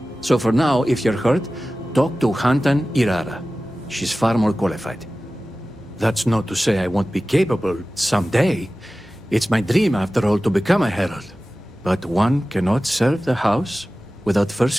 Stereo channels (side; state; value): both; normal; correlation 0.96